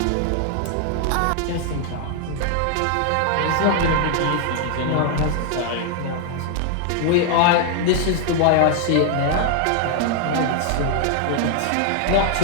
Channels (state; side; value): different; both; correlation 0.00